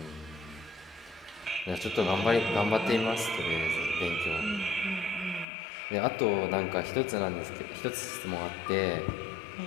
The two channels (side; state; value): right; drops out; at 5.5 s